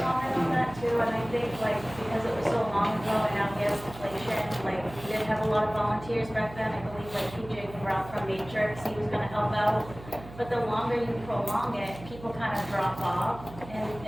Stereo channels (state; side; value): noise; right; hum, 16 dB below the sound